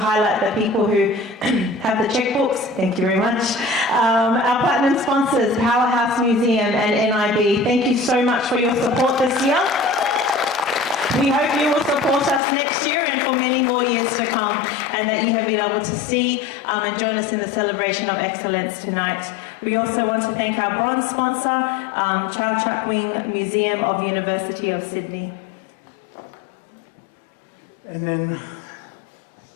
the people who have the checkbooks. Thank you very much. Our platinum sponsors, Powerhouse Museum and NIB, thank you so much for your support this year. We hope you will support us next year and for many more years to come, and that you have been able to see and join us in the celebration of excellence tonight. We also want to thank our bronze sponsor, Child Chuckwing Museum of University of Sydney. And then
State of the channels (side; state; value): right; drops out; at 12.4 s